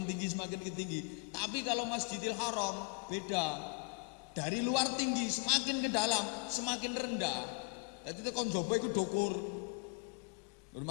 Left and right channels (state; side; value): quieter; right; 36.1 dB